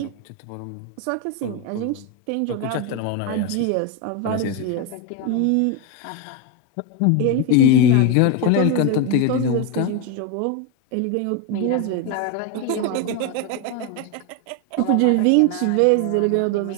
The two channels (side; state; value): both; different; correlation 0.02